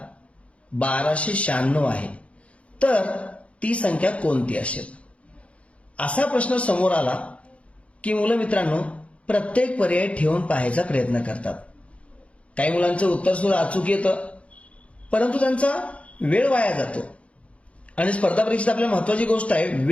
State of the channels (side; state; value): right; late; 0.063 ms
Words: 1296 आहे, तर ती संख्या कोणती असेल? असा प्रश्न समोर आला की मुलं मित्रांनो प्रत्येक पर्याय ठेवून पाहायचा प्रयत्न करतात। काही मुलांचं उत्तर सुद्धा अचूक येतं, परंतु त्यांचा वेळ वाया जातो। आणि स्पर्धा परीक्षेत आपल्याला महत्वाची गोष्ट आहे,